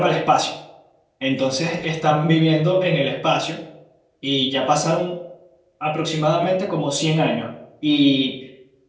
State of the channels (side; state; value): both; identical; correlation 1.00